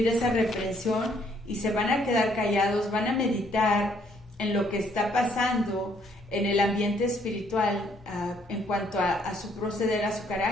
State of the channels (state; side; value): normal; both; correlation 0.67